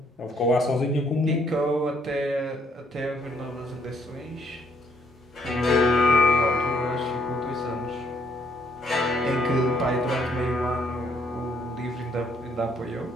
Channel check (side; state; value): both; normal; correlation 0.68